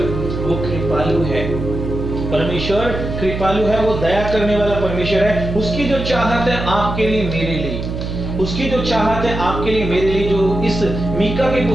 वो कृपालु है, परमेश्वर कृपालु है, वो दया करने वाला परमेश्वर है। उसकी जो चाहत है आपके लिए, मेरे लिए, उसकी जो चाहत है आपके लिए, मेरे लिए, जो इस मीका की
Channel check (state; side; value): noise; right; hum, 5 dB below the sound